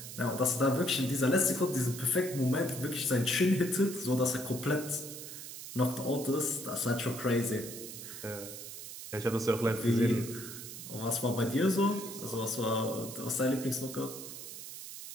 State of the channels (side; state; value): right; noise; hiss, 10 dB below the sound